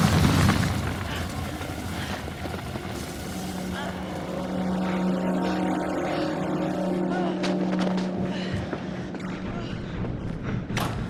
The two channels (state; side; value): identical; both; correlation 1.00